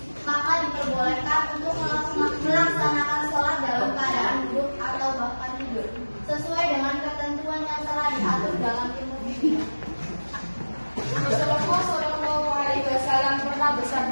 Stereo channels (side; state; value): both; inverted; correlation -1.00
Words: maka diperbolehkan untuk melaksanakan sholat dalam keadaan duduk atau bahkan tidur, sesuai dengan ketentuan yang telah diatur dalam ilmu fikih. Rasulullah Shallallahu Alaihi Wasallam pernah